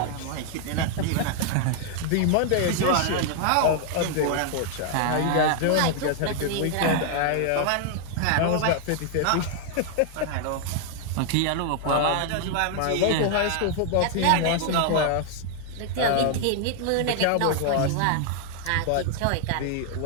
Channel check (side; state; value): both; different; correlation 0.00